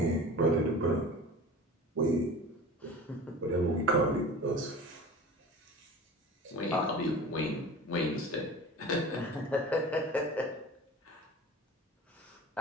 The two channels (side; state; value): both; normal; correlation 0.37